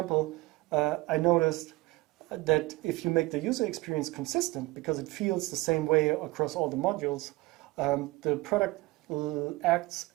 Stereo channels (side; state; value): left; quieter; 21.1 dB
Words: I noticed that if you make the user experience consistent, because it feels the same way across all the modules, the product acts